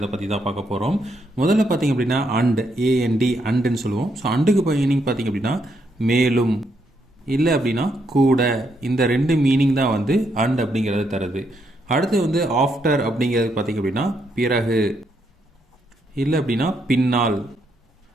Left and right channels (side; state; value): both; normal; correlation 0.77